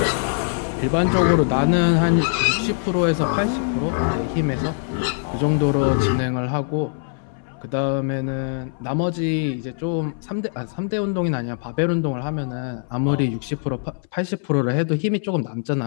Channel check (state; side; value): silent; right; 63 dB below the other